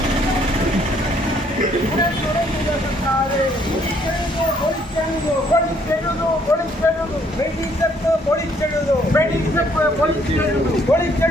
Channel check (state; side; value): normal; both; correlation 0.65